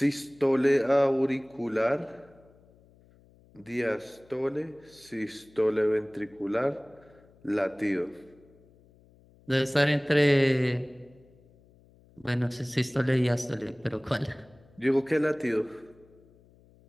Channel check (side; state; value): left; noise; hum, 28 dB below the sound